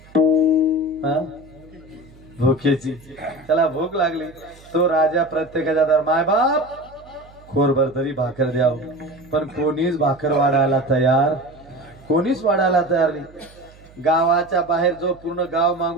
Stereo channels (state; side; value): noise; right; hum, 24 dB below the sound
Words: भुकेची. त्याला भूक लागली. तो राजा प्रत्येकाच्या दार, माय बाप खोरभर तरी भाकर द्याव, पण कोणीच भाकर वाढायला तयार, कोणीच वाढायला तयार नाही. गावाच्या बाहेर जो पूर्ण गाव